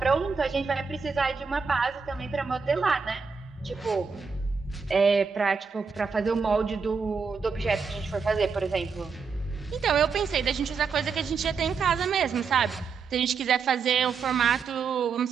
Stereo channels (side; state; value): left; quieter; 5.4 dB